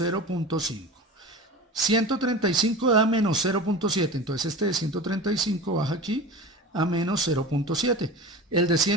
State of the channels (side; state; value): both; normal; correlation 0.32